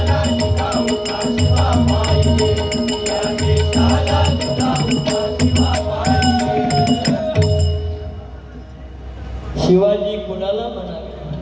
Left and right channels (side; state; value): both; identical; correlation 1.00